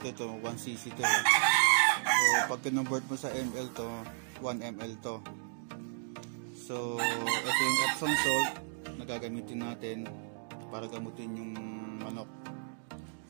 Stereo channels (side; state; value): left; silent; digital silence